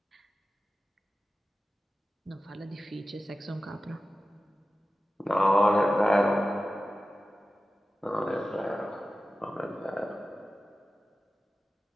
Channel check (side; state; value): both; normal; correlation 0.94